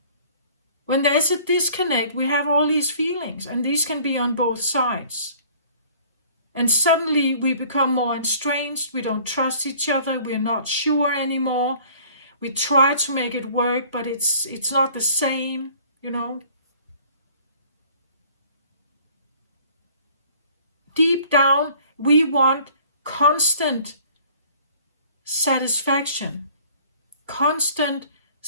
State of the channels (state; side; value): inverted; both; correlation -0.52